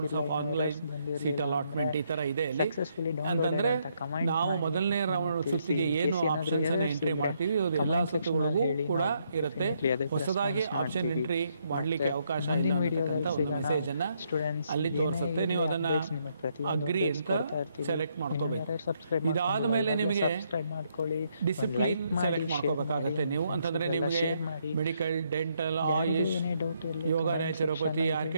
of online seat allotment. ಈ ತರ ಇದೆ ಇಲ್ಲಿ. ಅಂತಂದ್ರೆ ನಾವು ಮೊದಲನೇ ರೌಂಡ್ ಸುತ್ತಿಗೆ ಏನು ಆಪ್ಷನ್ಸ್ ಅನ್ನ ಎಂಟ್ರಿ ಮಾಡ್ತೀವಿ ಅದು ಎಲ್ಲಾ ಸುತ್ತುಗಳಿಗೂ ಕೂಡ ಇರುತ್ತೆ. ಹೊಸದಾಗಿ ಆಪ್ಷನ್ ಎಂಟ್ರಿ ಮಾಡ್ಲಿಕ್ಕೆ ಅವಕಾಶ ಇಲ್ಲ ಅಂತಕ್ಕಂಥ ಒಂದು ಮೆಸೇಜ್ ಅನ್ನ ಅಲ್ಲಿ ತೋರಿಸುತ್ತೆ. ನೀವು ಅದನ್ನ ಅಗ್ರಿ ಅಂತ ಸೆಲೆಕ್ಟ್ ಮಾಡ್ಕೋಬೇಕು. ಇದಾದ ಮೇಲೆ ನಿಮಗೆ ಡಿಸಿಪ್ಲಿನ್ ಸೆಲೆಕ್ಟ್ ಮಾಡ್ಕೋಬೇಕಾಗತ್ತೆ ನೀವು. ಅಂತಂದ್ರೆ ನಿಮಗೆ ಮೆಡಿಕಲ್, ಡೆಂಟಲ್, ಆಯುಷ್, ಯೋಗ, ನ್ಯಾಚುರೋಪತಿ,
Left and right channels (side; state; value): both; inverted; correlation -0.74